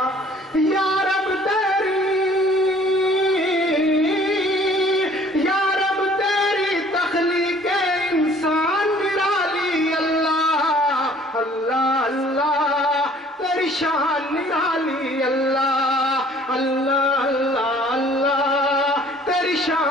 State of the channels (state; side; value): normal; both; correlation 0.55